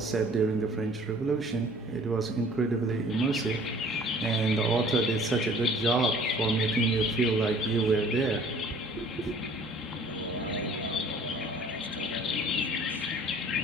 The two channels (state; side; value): normal; both; correlation 0.53